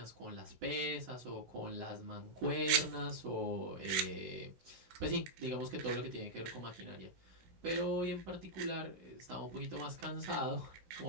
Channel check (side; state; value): left; late; 17 ms